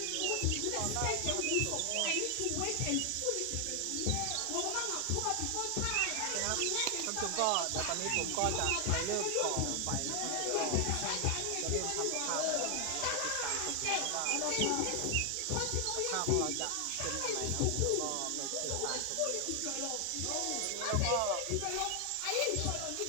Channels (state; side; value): different; both; correlation 0.00